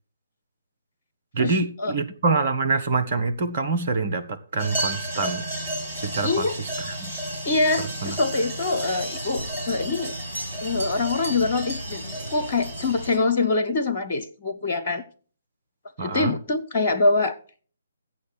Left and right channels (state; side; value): inverted; both; correlation -0.60